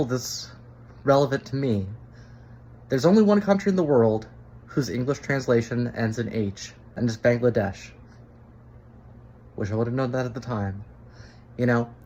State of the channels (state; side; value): identical; both; correlation 1.00